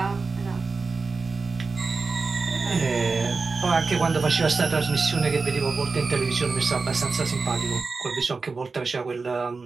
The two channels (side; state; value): left; quieter; 4.3 dB